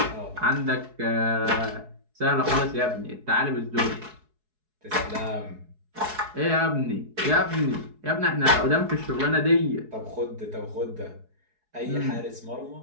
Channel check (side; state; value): left; late; 4.7 ms